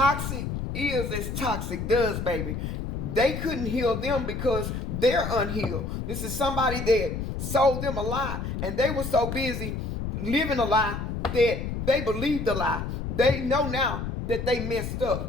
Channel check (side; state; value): left; noise; rumble, 4 dB below the sound